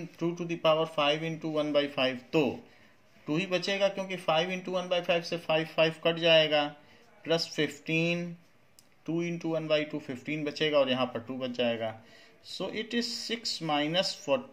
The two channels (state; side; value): identical; both; correlation 1.00